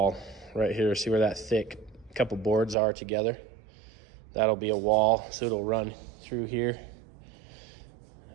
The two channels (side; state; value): left; drops out; at 2.8 s